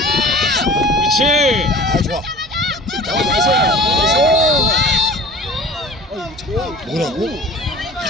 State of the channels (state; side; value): normal; both; correlation 0.42